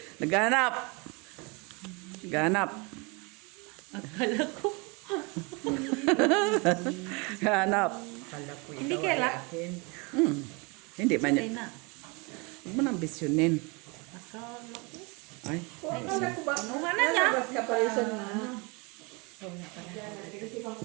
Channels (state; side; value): quieter; left; 29.6 dB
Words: Naghahanap. Naghahanap. Akala ko. Naghahanap. Hindi kaya. Hindi man Ay yan. na. Huwag mo nang bisyonin. Akala ko. Ay. Anuhan na niya. Naparisan na.